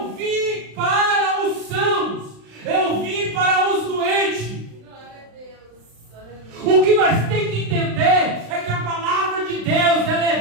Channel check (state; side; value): late; left; 35 ms